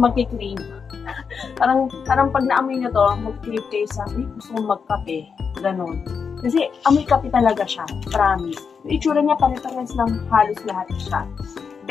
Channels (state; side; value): quieter; right; 6.0 dB